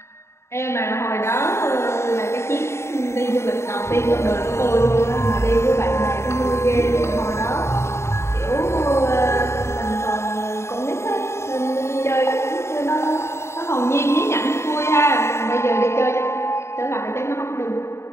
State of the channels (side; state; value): right; late; 0.13 ms